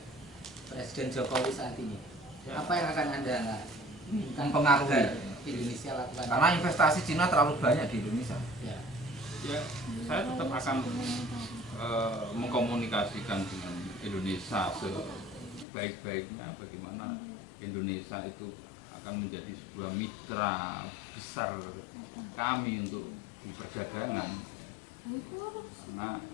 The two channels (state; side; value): drops out; right; at 15.7 s